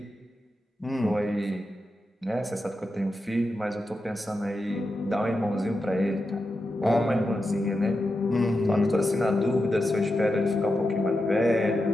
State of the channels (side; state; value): both; normal; correlation 0.89